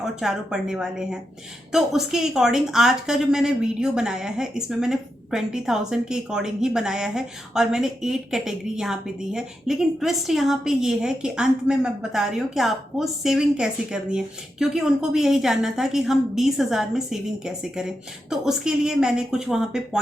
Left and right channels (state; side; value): normal; both; correlation 0.86